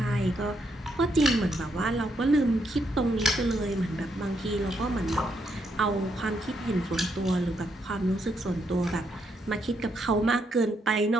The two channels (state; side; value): normal; both; correlation 0.77